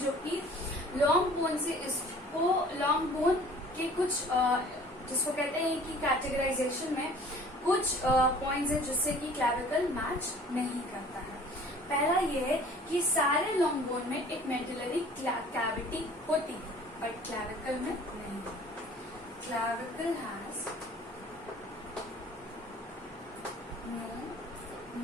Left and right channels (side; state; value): both; normal; correlation 0.49